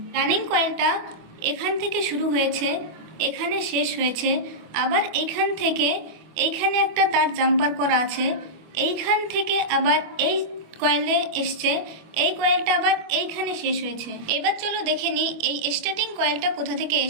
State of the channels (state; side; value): late; left; 24 ms